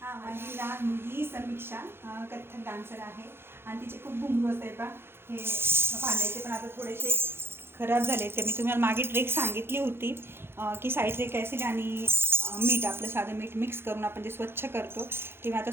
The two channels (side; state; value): left; late; 0.11 ms